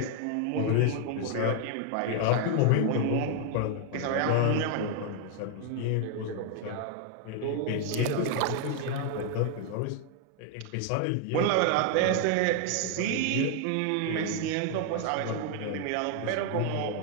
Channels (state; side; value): different; both; correlation 0.00